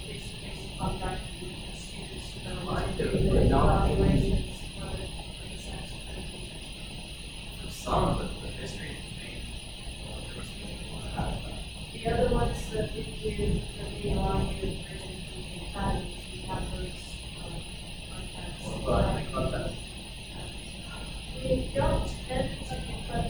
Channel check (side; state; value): both; identical; correlation 1.00